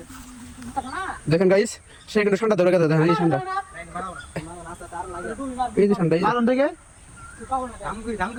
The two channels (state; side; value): identical; both; correlation 1.00